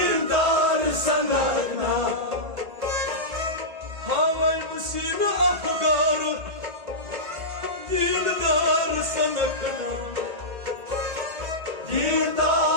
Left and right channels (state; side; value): late; left; 1.8 ms